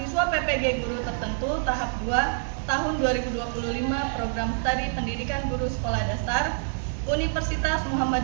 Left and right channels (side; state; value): left; silent; digital silence